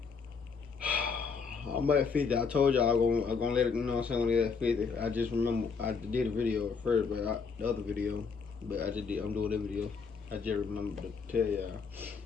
I'm at 50. I told y'all I'm gonna let it, you know what I'm saying, when it's at 50. I just remember I did a video at first, but the other video, but I'm doing that video. I just remember to tell y'all.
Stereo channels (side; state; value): right; quieter; 5.4 dB